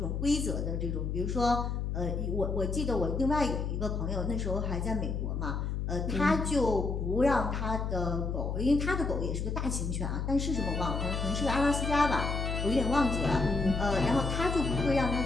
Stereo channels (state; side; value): noise; left; hum, 2 dB below the sound